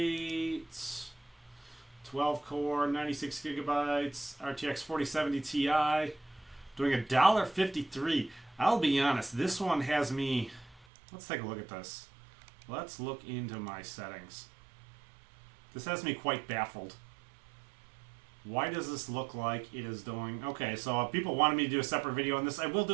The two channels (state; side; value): drops out; left; at 10.9 s